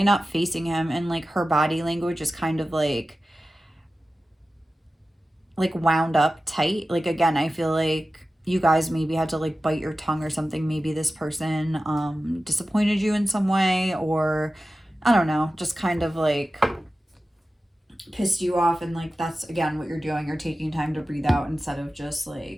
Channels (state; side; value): normal; both; correlation 0.94